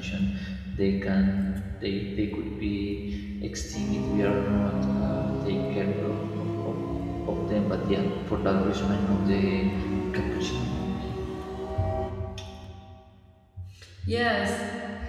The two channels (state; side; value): identical; both; correlation 1.00